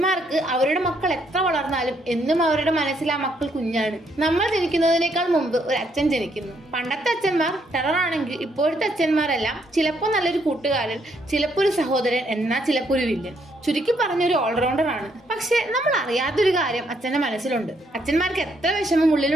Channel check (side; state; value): both; normal; correlation 0.72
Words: അവരുടെ മക്കൾ എത്ര വളർന്നാലും എന്നും അവരുടെ മനസ്സിൽ ആ മക്കൾ കുഞ്ഞാണ്. നമ്മൾ ജനിക്കുന്നതിനേക്കാൾ മുമ്പ് ഒരു അച്ഛൻ ജനിക്കുന്നു. പണ്ടത്തെ അച്ഛന്മാർ ടെററാണെങ്കിൽ ഇപ്പോഴത്തെ അച്ഛന്മാരെല്ലാം ചിലപ്പോൾ നല്ലൊരു കൂട്ടുകാരൻ, ചിലപ്പോൾ ഒരു സഹോദരൻ, എന്നാൽ ചിലപ്പോൾ ഒരു വില്ലൻ. ചുരുക്കി പറഞ്ഞൊരു ഓൾറൗണ്ടർ ആണ്. പക്ഷെ നമ്മൾ അറിയാത്തൊരു കാര്യം അച്ഛന്റെ മനസ്സിലുണ്ട്. അച്ഛന്മാർക്ക് എത്ര വിഷമം